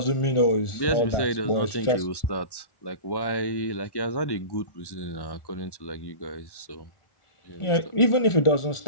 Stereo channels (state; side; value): late; right; 1.1 ms